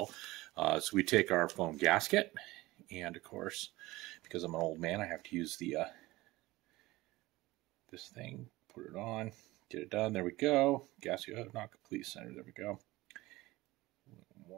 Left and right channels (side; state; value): left; quieter; 19.3 dB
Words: So we take our foam gasket, and of course, because I'm an old man, I have to use the this thing, put it on, get it done. There we go. Gasket not complete center. There we go.